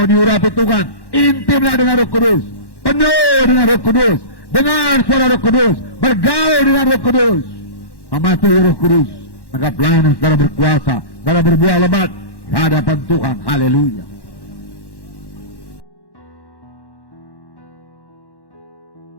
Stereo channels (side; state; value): right; late; 1.1 ms